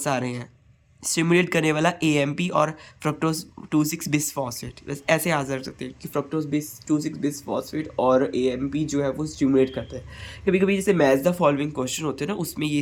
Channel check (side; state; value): both; identical; correlation 1.00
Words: सारे हैं। स्टिमुलेट करने वाला AMP और फ्रक्टोज 2,6 बिसफॉस्फेट, बस ऐसे आ सकते हैं कि फ्रक्टोज 2,6 बिसफॉस्फेट और AMP जो है वो स्टिमुलेट करते हैं। कभी कभी जैसे मैच द फॉलोइंग क्वेश्चन होते हैं ना, उसमें